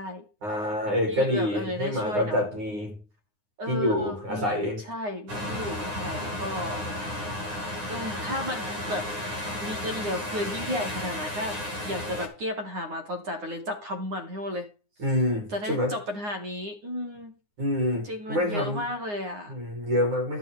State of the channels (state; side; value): late; left; 9.7 ms